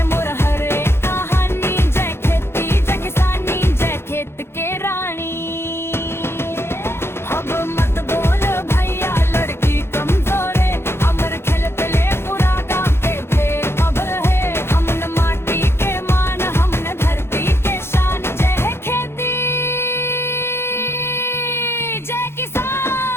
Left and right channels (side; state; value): right; late; 0.12 ms